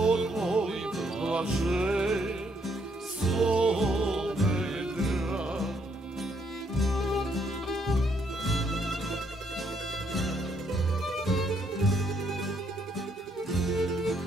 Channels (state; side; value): normal; both; correlation 0.72